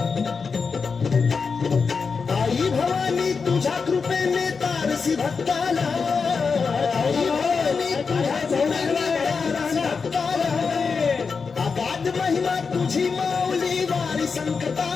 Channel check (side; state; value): right; quieter; 5.2 dB